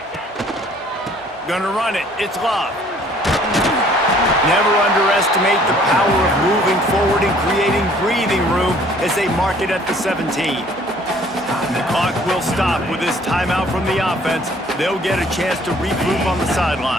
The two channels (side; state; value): both; normal; correlation 0.57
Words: Gonna run it. It's Love. Never underestimate the power of moving forward and creating breathing room as they mark it at the 17. The clock will stop with this timeout from the offense. They'll get a chance to regroup on the